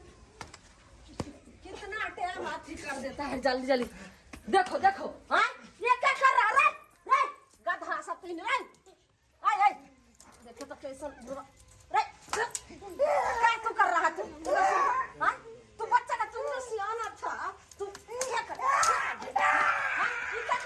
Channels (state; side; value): identical; both; correlation 1.00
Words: कितना टाइम हाथी कर देता है जल्दी जल्दी देखो देखो हाँ ये क्या कर रहा है रे गधा सब तीन रे आय आय देखो तो कैसा रे क्या तू कर रहा तू हाँ तू बच्चा का तू तो सियाना था तू क्या कर हाँ ये क्या